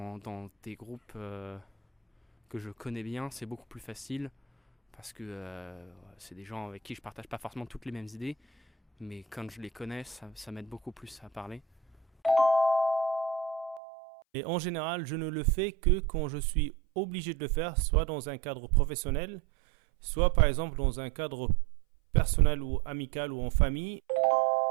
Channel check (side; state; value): left; drops out; at 13.8 s